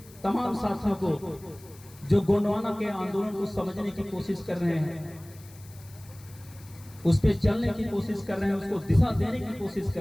तमाम साथियों को जो गोंडवाना के आंदोलन को समझने की कोशिश कर रहे हैं, उस पर चलने की कोशिश कर रहे हैं, उसको दिशा देने की कोशिश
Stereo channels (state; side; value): noise; left; hiss, 23 dB below the sound